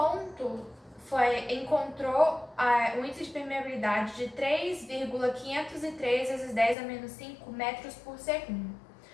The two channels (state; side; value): drops out; right; at 6.8 s